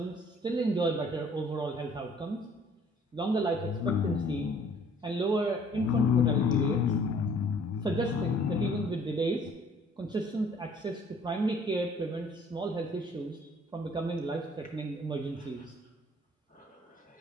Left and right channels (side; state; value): both; normal; correlation 0.57